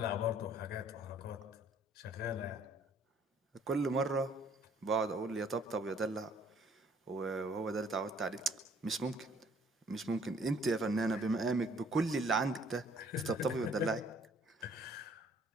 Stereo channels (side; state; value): both; normal; correlation 0.60